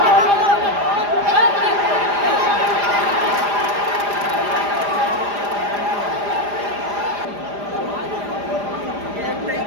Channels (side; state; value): left; late; 4.9 ms